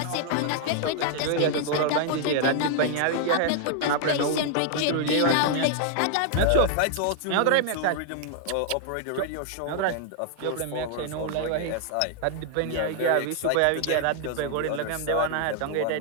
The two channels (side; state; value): both; different; correlation 0.00